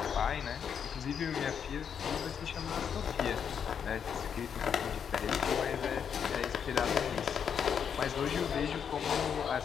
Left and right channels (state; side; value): quieter; right; 7.6 dB